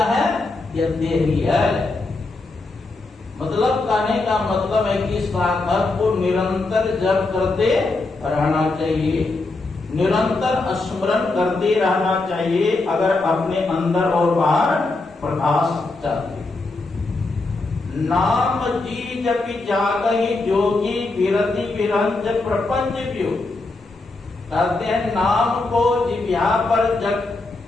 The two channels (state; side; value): quieter; right; 3.3 dB